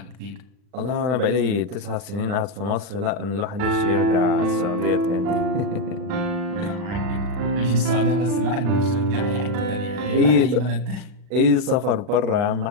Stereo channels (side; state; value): left; late; 40 ms